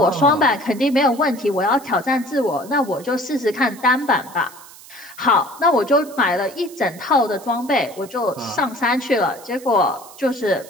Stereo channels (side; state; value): right; noise; hiss, 20 dB below the sound